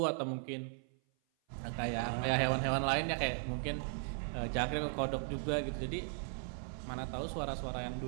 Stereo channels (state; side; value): silent; left; 53 dB below the other